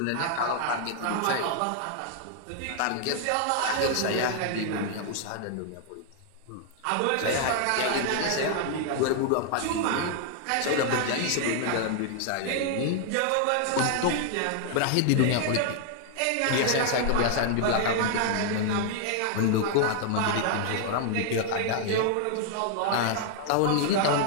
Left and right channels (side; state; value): both; different; correlation 0.00